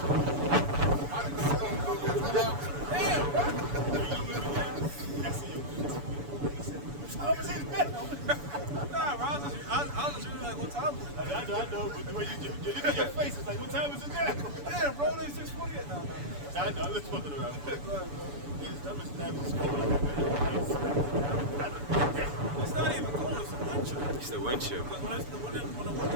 Damn, bro. Nah, bro, I was just really like, what time is it? I know, but the way you look at your face, it's like, what time is it now? Damn, bro, it's 6:40 yet. Nah. I know, I'm just fucking around. Go ahead, bro. That was cold like that. It's not even cold, it's a wind chill. It's the wind chill. Because when the wind is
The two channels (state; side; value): late; left; 7.0 ms